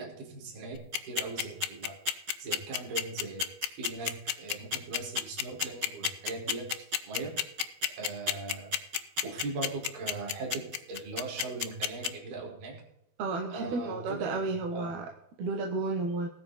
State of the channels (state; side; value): late; left; 12 ms